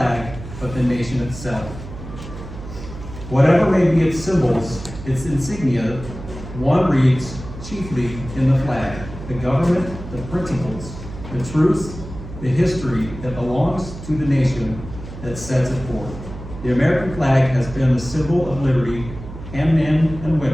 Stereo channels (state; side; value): noise; right; hum, 12 dB below the sound